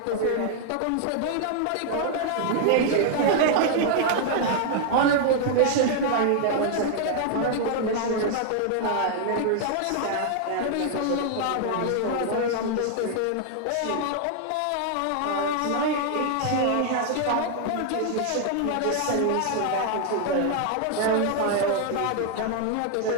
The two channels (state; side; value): different; both; correlation 0.00